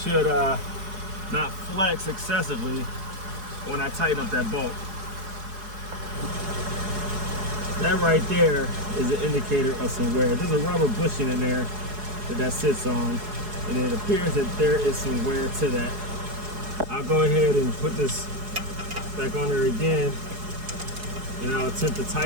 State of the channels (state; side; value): late; left; 4.8 ms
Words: not flex excessively when I tighten up that bolt. That right there is an indicator of some wear. There's a rubber bushing in there that sits on, and it appears that there is some wear to that. I'll go ahead and put this back on there again, and I'll attempt to